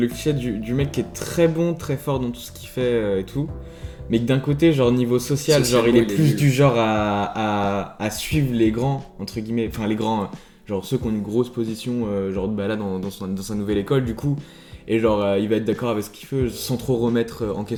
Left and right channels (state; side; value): identical; both; correlation 1.00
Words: cliché du mec qui est très bon, très fort dans tout ce qu'il fait et tout. Mais que d'un côté, genre niveau social, genre il est plus du genre à suivre les grands, entre guillemets, enfin les grands, genre ceux qui ont une grosse position, genre bah là dans sa nouvelle école du coup. Et genre il va être d'accord avec ce qu'il fait sans trop remettre en